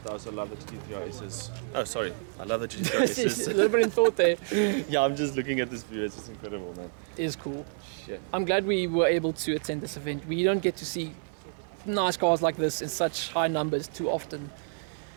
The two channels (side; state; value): left; silent; digital silence